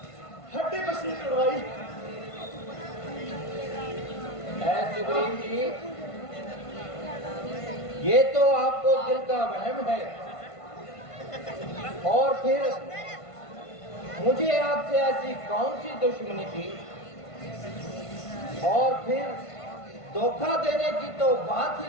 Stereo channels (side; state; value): right; late; 1.5 ms